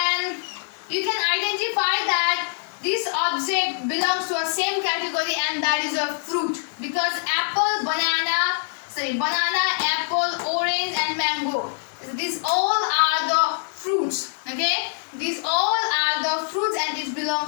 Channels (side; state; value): right; silent; digital silence